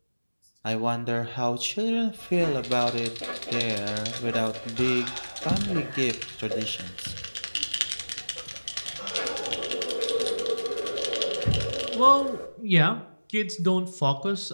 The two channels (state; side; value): inverted; both; correlation -1.00